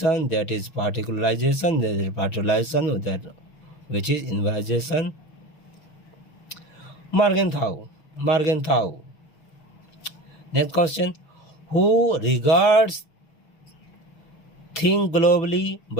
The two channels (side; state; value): right; late; 6.4 ms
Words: That is particularization. That is particularization. That which is universalization. Morgenthau. Next question. Who regards think globally